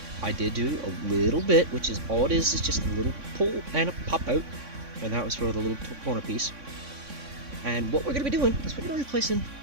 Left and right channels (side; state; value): left; late; 3.6 ms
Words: I did do a little bit, which is all it is just a little pull and a pop out, and that was for the little corner piece. And what we're going to be doing is we're going to be replacing